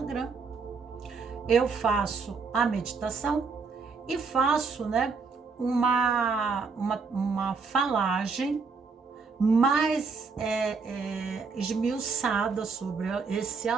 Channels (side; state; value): left; quieter; 4.8 dB